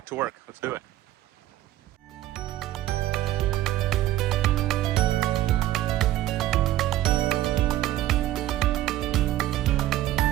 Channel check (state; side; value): quieter; left; 14.3 dB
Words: to work. Let's do it.